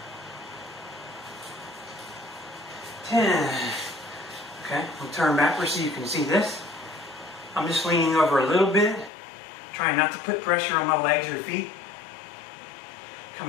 10. Okay, I'll turn backwards so you can see this. I'm just leaning over a little bit, trying not to put pressure on my legs or feet.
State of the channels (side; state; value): right; drops out; at 9.1 s